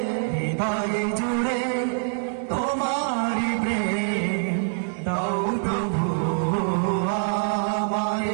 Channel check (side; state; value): left; silent; 62 dB below the other